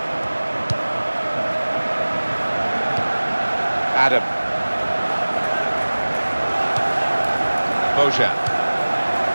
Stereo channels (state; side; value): inverted; both; correlation -1.00